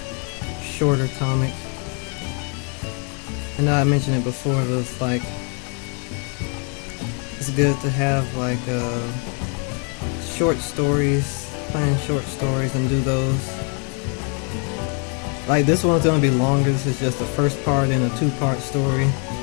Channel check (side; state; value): right; quieter; 39.6 dB